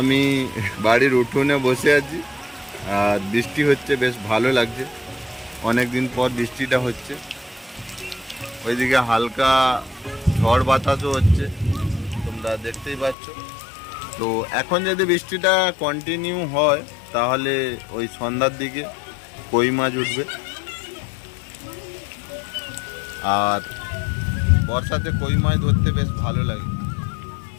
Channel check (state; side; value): drops out; right; at 13.2 s